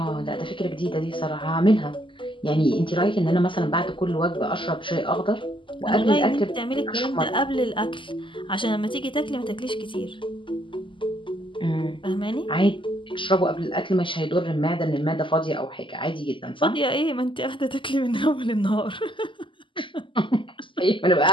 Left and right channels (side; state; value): right; late; 0.25 ms